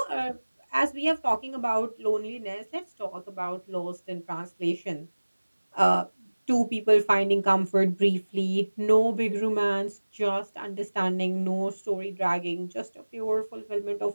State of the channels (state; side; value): inverted; both; correlation -1.00